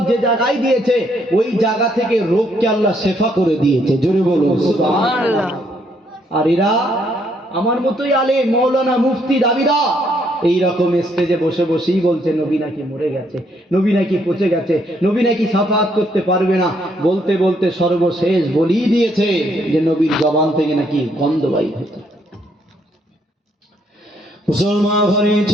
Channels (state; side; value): normal; both; correlation 0.71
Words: যে জায়গায় দিয়েছে ওই জায়গা থেকে রোগকে আল্লাহ শেফা করে দিয়েছে। জোরে বলুন সুবহানাল্লাহ। আর এরা আমার মতোই আলেম, মৌলানা, মুফতি, দাবিদার, এইরকম স্টেজে বসে বসেই বলছে নবী নাকি মরে গেছে, নবী নাকি পচে গেছে, নবী নাকি সাফাত করতে পারবে না। বলতে বলতে সর্বশেষ বলেই দিয়েছে যে নবীর জবান থেকে নাকি গন্ধ বাইর হতো। মুসলমান ঘরে